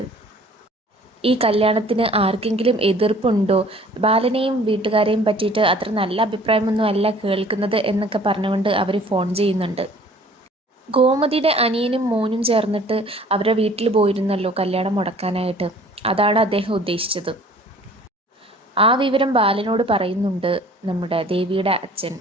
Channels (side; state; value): both; normal; correlation 0.51